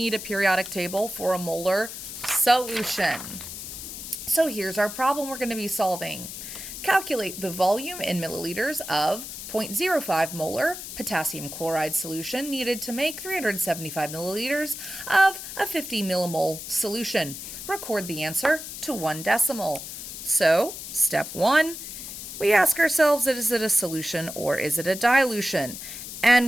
a periodic table for a molar solution. So here's our problem we're going to be solving. Calculate the volume in milliliters of 0.05 molar potassium chloride solution needed to make 375 milliliters of a 50 millimole solution. Record the answer to 1 decimal. So, step 1, we ask ourselves, is it a solution or is it a dilution?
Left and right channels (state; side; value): noise; left; hiss, 9 dB below the sound